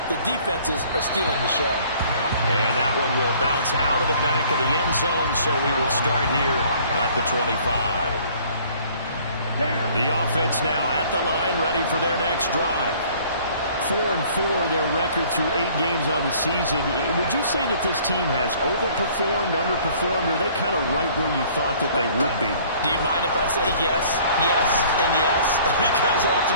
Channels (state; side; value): inverted; both; correlation -0.55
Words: the defenses are stealing the show. And that one will bounce out of the back of the end zone, so we will start here at the 25. The offense now at the line, ready for their next drive. 4-4, their record through 8 games on the season. Would you say that this team has overperformed, underperformed, or are they kind of right where you thought that they would be? Do you mind if I say yes, yes, and yes? Because